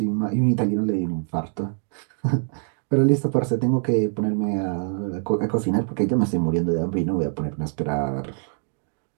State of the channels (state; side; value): silent; left; 62 dB below the other